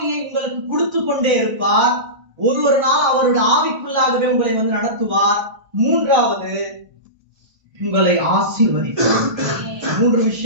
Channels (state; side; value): late; left; 1.4 ms